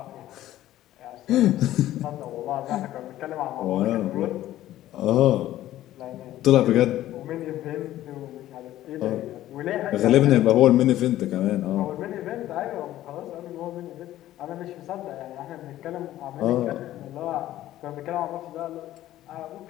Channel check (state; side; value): quieter; right; 14.0 dB